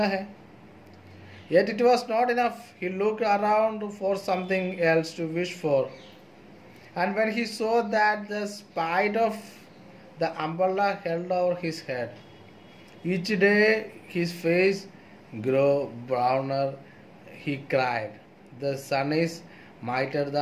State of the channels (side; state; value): both; identical; correlation 1.00